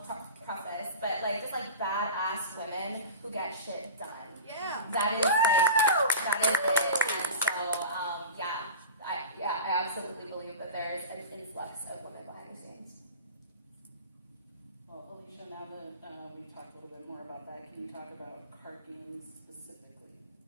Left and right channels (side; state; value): both; inverted; correlation -0.33